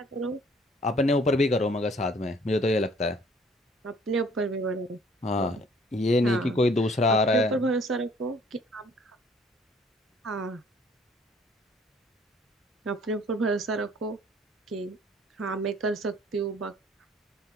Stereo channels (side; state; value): both; normal; correlation 0.58